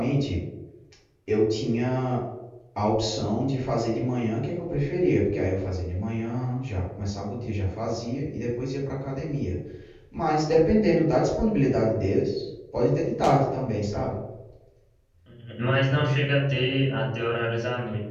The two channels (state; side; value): identical; both; correlation 1.00